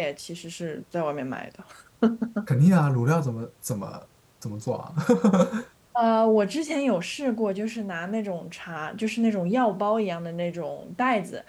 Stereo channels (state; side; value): identical; both; correlation 1.00